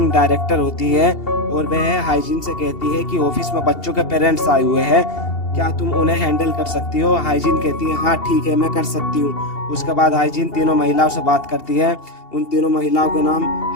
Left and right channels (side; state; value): right; late; 2.8 ms